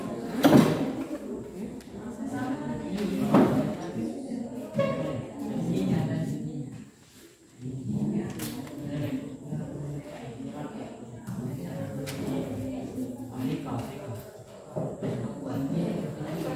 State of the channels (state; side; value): identical; both; correlation 1.00